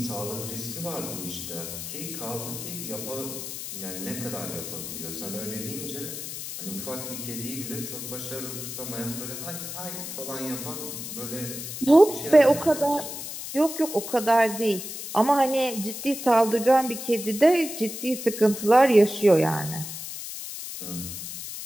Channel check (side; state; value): left; noise; hiss, 8 dB below the sound